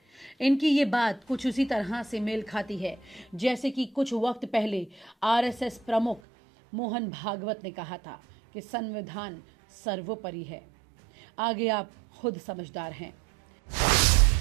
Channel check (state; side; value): drops out; left; at 6.2 s